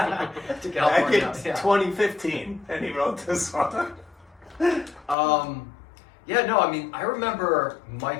To Back California. in Yeah. 2015, and he wrote this song. Yeah, no, I mean, I remember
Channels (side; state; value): right; drops out; at 5.2 s